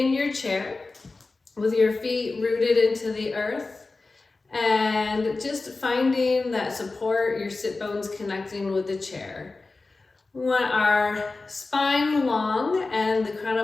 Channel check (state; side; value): quieter; right; 3.6 dB